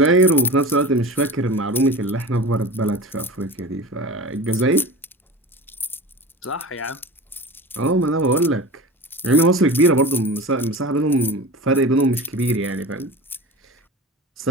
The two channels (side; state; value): both; normal; correlation 0.33